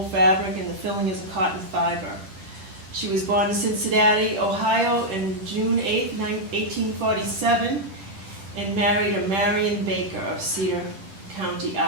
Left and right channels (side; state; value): left; late; 10 ms